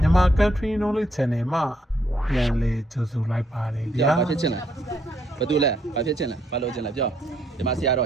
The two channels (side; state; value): both; normal; correlation 0.72